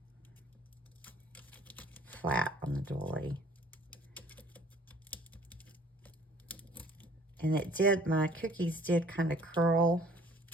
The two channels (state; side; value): normal; both; correlation 0.55